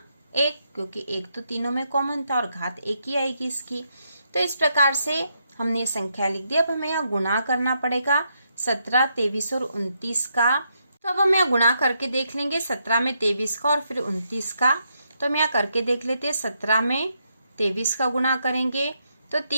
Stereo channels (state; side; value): inverted; both; correlation -0.79